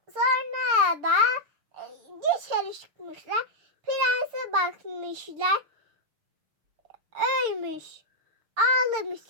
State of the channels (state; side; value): late; left; 6.7 ms